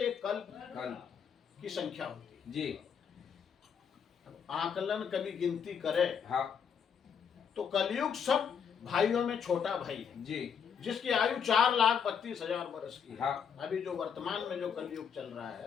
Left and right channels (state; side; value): quieter; right; 7.3 dB